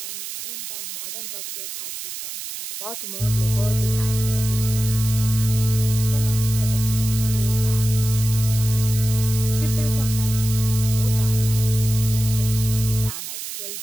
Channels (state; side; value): noise; right; hiss, 8 dB below the sound